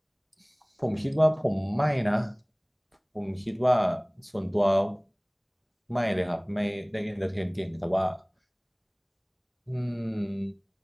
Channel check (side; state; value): both; identical; correlation 1.00